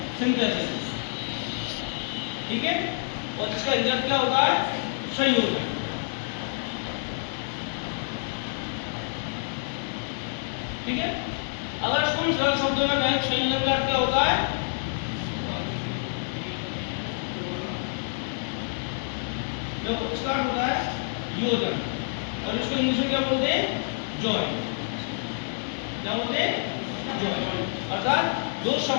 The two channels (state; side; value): silent; right; digital silence